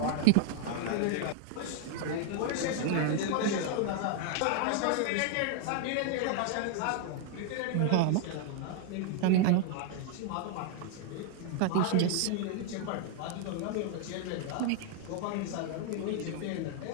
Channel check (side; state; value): both; different; correlation 0.00